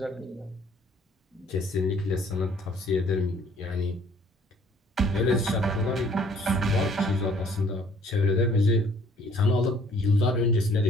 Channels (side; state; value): both; normal; correlation 0.59